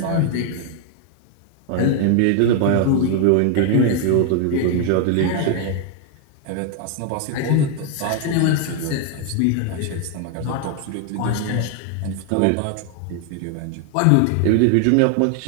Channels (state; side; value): different; both; correlation 0.00